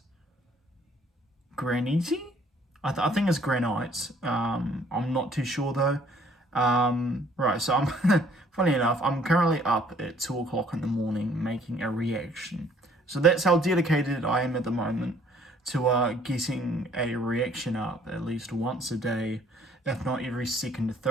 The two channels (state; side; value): normal; both; correlation 0.60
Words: I think it's Granite. I'm not too sure though. Right, so I'm, funny enough, I'm currently up at 2 o'clock in the morning making a reaction. So that's how dedicated I am at the moment to getting a reaction up at least once a day, if not every second or